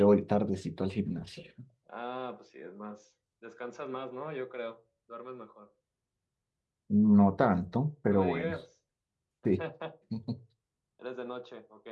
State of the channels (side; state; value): both; identical; correlation 1.00